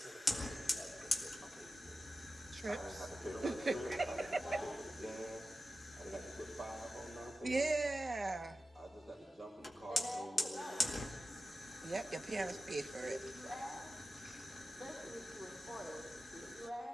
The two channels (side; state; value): both; normal; correlation 0.93